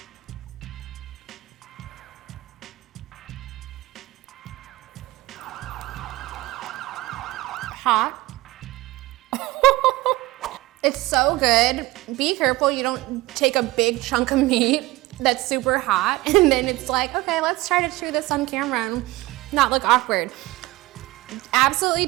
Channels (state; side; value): quieter; left; 19.0 dB